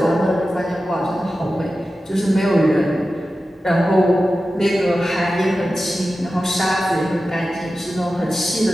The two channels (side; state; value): both; normal; correlation 0.93